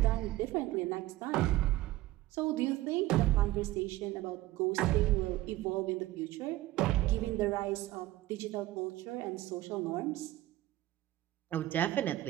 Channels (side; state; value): left; quieter; 16.4 dB